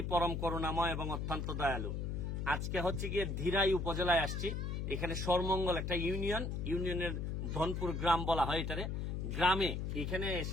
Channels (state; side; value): noise; left; hum, 2 dB below the sound